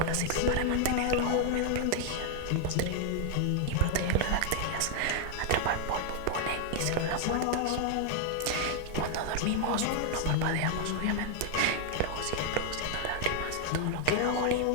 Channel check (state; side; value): different; both; correlation 0.00